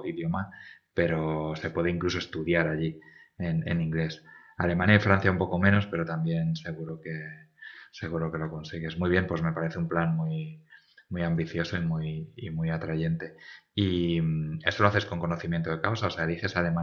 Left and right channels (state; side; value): identical; both; correlation 1.00